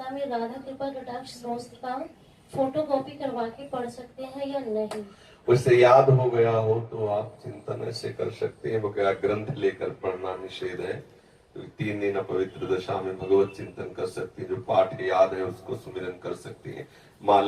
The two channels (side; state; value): both; identical; correlation 1.00